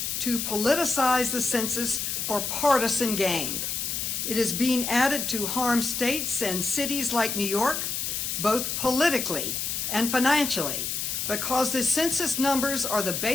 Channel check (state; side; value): noise; left; hiss, 2 dB below the sound